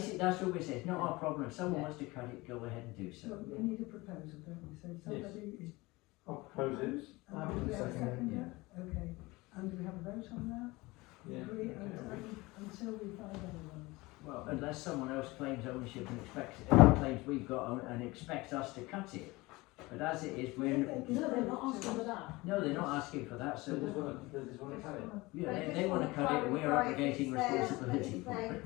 That's what we say. It's not our problem. If someone Yeah. wants to cut it, go ahead and do so. So we need a proposal, don't we? So somebody is. I'll propose it. And do we have a seconder? Okay. And do we have a vote on that? Yeah. Agree until we find otherwise. Well, unless someone else claims ownership and claims we've got and expects us to cut it, But as it is, If we're, they can No, they're not talk to asking for us. that. no, they're not asking for that, so, They just wanna cut it. yeah, they wanna cut it, and we're abrogating responsibility for it.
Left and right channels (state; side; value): quieter; right; 22.1 dB